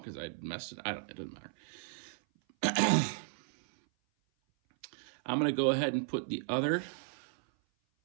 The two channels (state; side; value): silent; left; 55 dB below the other